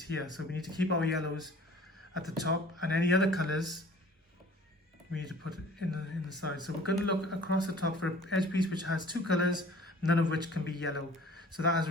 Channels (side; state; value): both; normal; correlation 0.49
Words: here. So we need to keep our yellows at the top, and any other colors we need to put it in the side. So we're going to look across the top for an edge piece which has two colors, none of which can be yellow. So that has